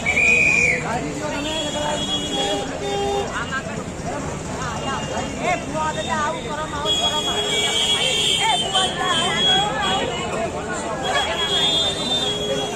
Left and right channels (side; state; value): both; identical; correlation 1.00